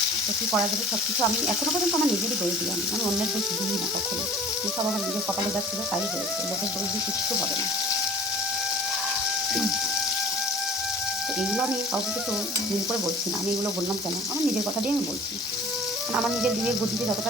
তো কী করা যাবে, সব কিছু আমি এখনও পর্যন্ত আমার নিজেরই দোষ দিই, আমি অন্যের দোষ দিই না কখনো, সব আমার নিজের কপালে যাচ্ছিল তাই হয়েছে, লোকের দোষ দিয়ে কিচ্ছু হবে না। তো এইগুলো আমি কাউকে কিছু দিন করে বলছি না, আমি এগুলো বললাম কেন, আমার নিজের কথা দিয়ে আমি বলছি, কারণ আমার নিজের বিবেক বুদ্ধিতে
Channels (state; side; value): normal; both; correlation 0.45